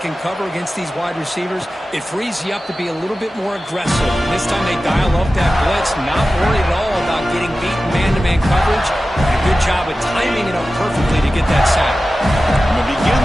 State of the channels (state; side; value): normal; both; correlation 0.95